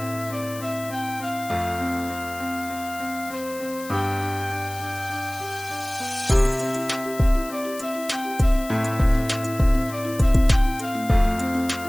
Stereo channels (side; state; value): left; noise; hiss, 15 dB below the sound